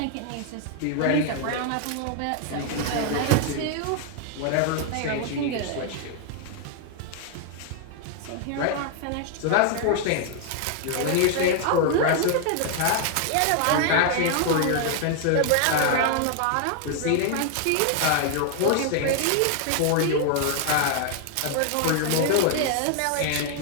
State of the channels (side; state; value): both; different; correlation 0.00